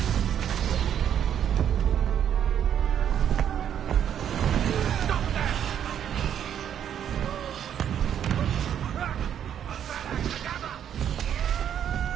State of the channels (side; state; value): left; quieter; 9.4 dB